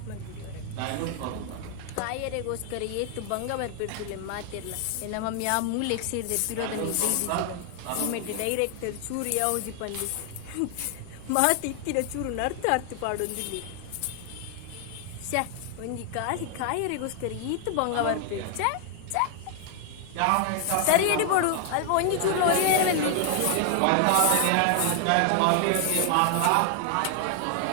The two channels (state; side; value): different; both; correlation 0.00